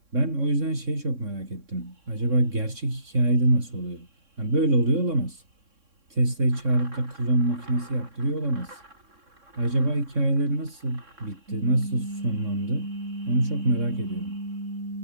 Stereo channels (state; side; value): late; left; 3.6 ms